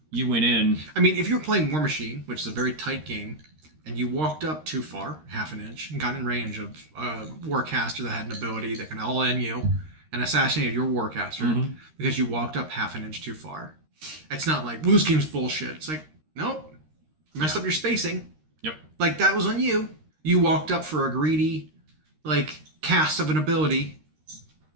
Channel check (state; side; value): late; left; 13 ms